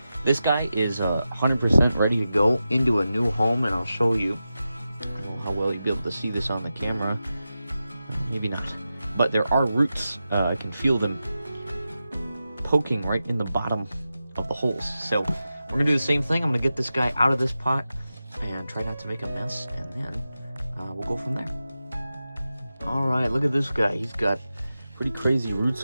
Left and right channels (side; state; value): both; inverted; correlation -0.92